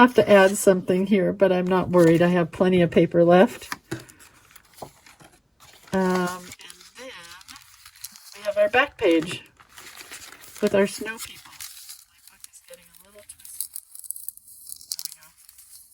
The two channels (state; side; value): identical; both; correlation 1.00